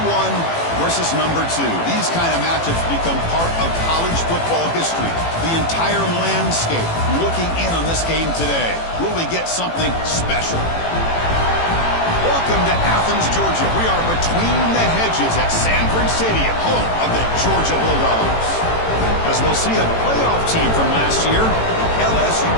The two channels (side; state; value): right; late; 18 ms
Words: versus number 2. These kind of matchups become part of college football history. The entire landscape looking in on this game today. Will we get something special? Welcome to Athens, Georgia. We are between the hedges at Sanford Stadium, home of the Georgia Bulldogs. As we'll see a playoff team from last year, the LSU